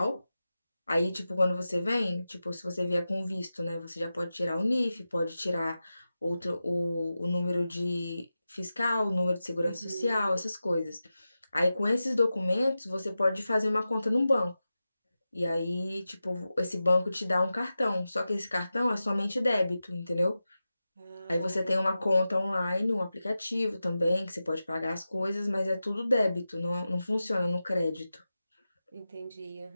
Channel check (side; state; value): both; inverted; correlation -0.93